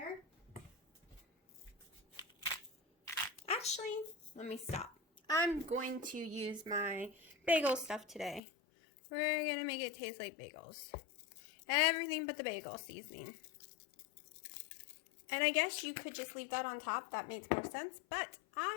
Actually, let me stop. I'm going to use my bagel stuff today. We're going to make it taste like bagels. Everything but the bagel seasoning. And I guess you could just leave that on top. That makes more sense. But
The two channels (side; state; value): right; drops out; at 8.4 s